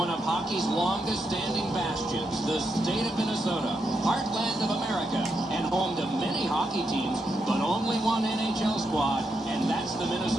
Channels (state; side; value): normal; both; correlation 0.82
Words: of hockey's longest-standing bastions, the state of Minnesota, heartland of America, and home to many hockey teams, but only one NHL squad, and that's the